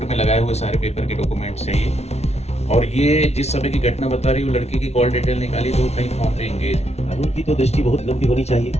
में लगाए हुए सारे पेपर के डॉक्यूमेंट्स चाहिए। और ये जिस समय की घटना बता रही हूँ, लड़की की कॉल डिटेल निकाली तो कहीं फॉर्म पे एंगेज। कानून की तो दृष्टि बहुत लंबी होनी चाहिए,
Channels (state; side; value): late; right; 0.31 ms